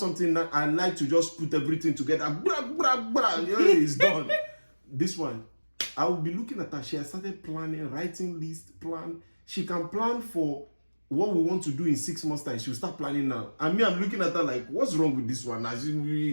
I like to just put everything together. Blah, blah, blah. Yeah, it's done. This one, I will be looking at her. She has started planning, writing list, plan. She can plan for what we want to do in 6 months' time. She'll start planning now. And me, I'm looking at her like, what's wrong with this one?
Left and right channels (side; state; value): both; inverted; correlation -1.00